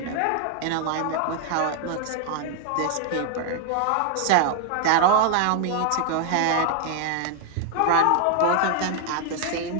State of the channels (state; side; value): different; both; correlation 0.00